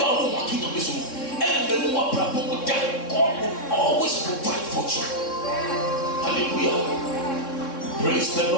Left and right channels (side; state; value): right; late; 3.6 ms